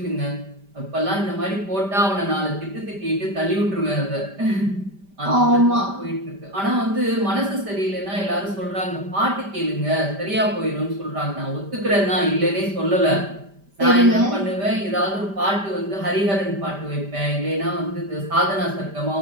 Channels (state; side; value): late; left; 5.1 ms